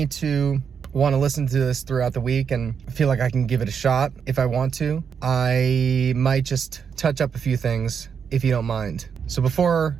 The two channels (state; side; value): quieter; left; 6.8 dB